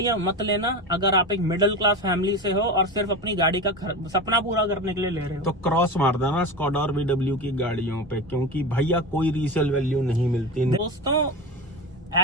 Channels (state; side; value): normal; both; correlation 0.25